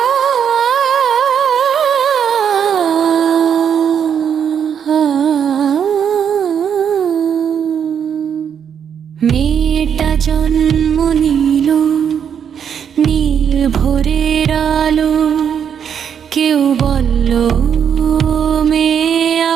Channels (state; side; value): quieter; left; 8.0 dB